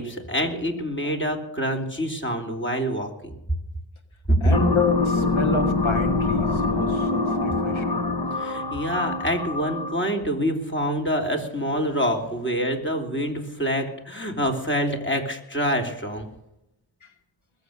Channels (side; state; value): both; normal; correlation 0.15